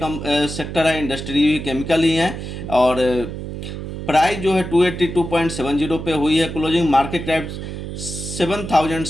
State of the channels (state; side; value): noise; right; hum, 8 dB below the sound